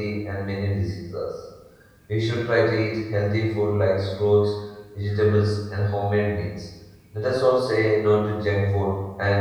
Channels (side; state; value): both; identical; correlation 1.00